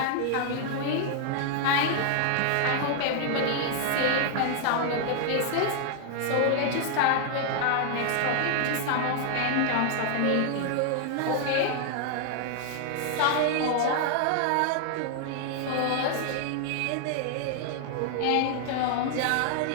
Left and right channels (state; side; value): different; both; correlation 0.00